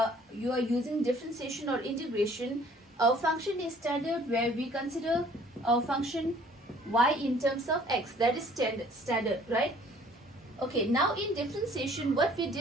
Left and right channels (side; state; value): both; normal; correlation 0.55